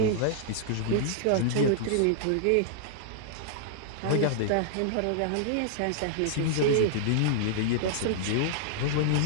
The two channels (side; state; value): both; different; correlation -0.01